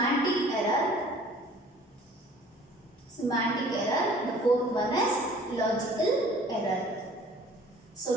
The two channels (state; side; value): normal; both; correlation 0.51